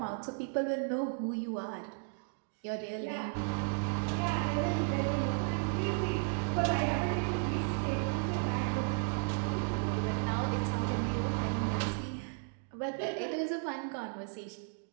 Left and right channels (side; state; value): left; silent; digital silence